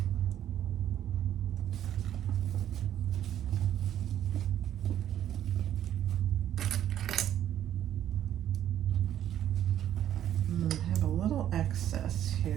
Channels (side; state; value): left; quieter; 11.1 dB